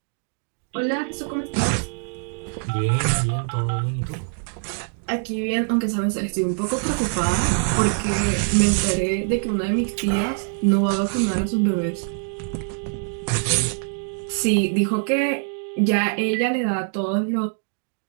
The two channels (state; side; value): silent; left; 61 dB below the other